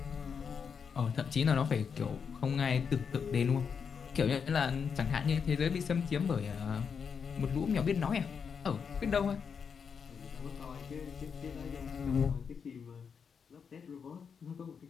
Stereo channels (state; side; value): quieter; right; 6.4 dB